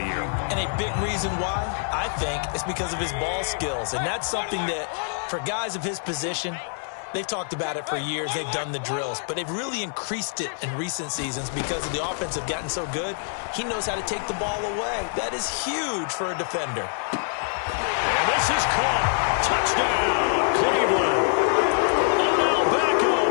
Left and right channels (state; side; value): silent; right; digital silence